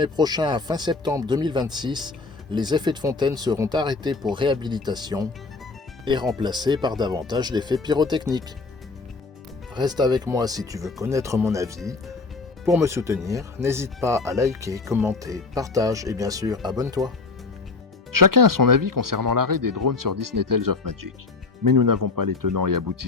prochain à fin septembre 2026, les effets de fontaine seront arrêtés pour réhabilitation et remplacés par davantage d'effets pyrotechniques. Reste avec moi si tu veux connaître mon avis. Pour me soutenir, n'hésite pas à liker, commenter, partage et bien sûr abonne-toi. Chacun a son avis concernant l'arrêt des drones sur Disney Tales of Magic. Mais nous n'avons pas les tenants et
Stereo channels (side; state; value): right; quieter; 3.9 dB